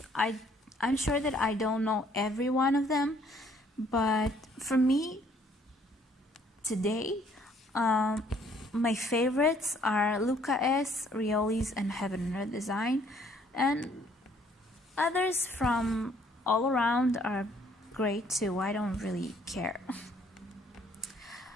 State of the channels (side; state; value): both; normal; correlation 0.62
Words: I'm sure that I don't know every one of them, but for me today, my favorites are Luca S, Rioli's, and Heaven and Earth Design, and others from all around are great too. I don't really care.